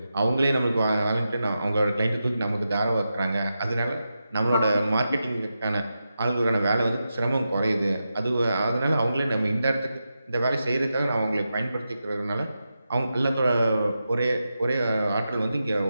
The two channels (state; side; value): inverted; both; correlation -0.89